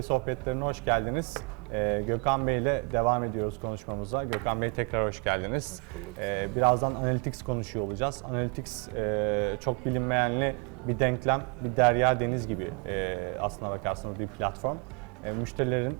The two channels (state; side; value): quieter; left; 34.2 dB